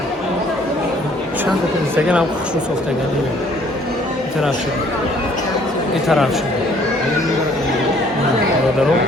چند تا اینستاگرام هم خوشرو سوختگی میاد این طرف شد این طرف شد نه برادرو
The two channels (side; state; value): both; normal; correlation 0.59